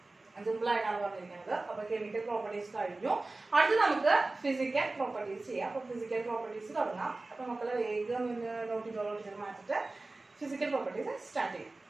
സിമ്പിൾ ആയിട്ടാണ് പറഞ്ഞിരിക്കുന്നത്. അപ്പൊ കെമിക്കൽ പ്രോപ്പർട്ടീസ് കഴിഞ്ഞു. അടുത്ത് നമുക്ക് ഫിസിക്കൽ പ്രോപ്പർട്ടീസ് ചെയ്യാം. അപ്പൊ ഫിസിക്കൽ പ്രോപ്പർട്ടീസ് തുടങ്ങാം. അപ്പൊ മക്കളെ വേഗം നോട്ട് ചെയ്ത് മാറ്റിട്ട് ഫിസിക്കൽ പ്രോപ്പർട്ടീസ് സ്റ്റാർട്ട് ചെയ്യാം.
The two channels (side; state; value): left; quieter; 3.2 dB